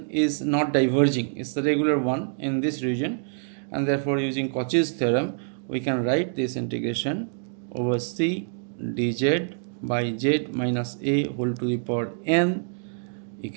is not diverging, it's the regular one in this region, and therefore using Cauchy's theorem we can write this integration over C dz by z minus a whole to the power n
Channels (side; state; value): left; silent; digital silence